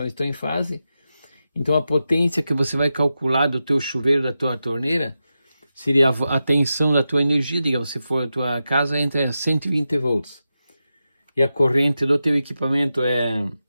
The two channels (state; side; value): inverted; both; correlation -0.90